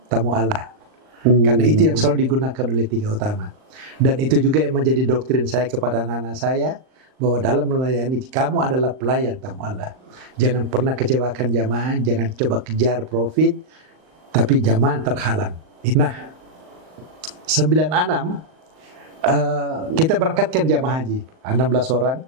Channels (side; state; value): left; late; 39 ms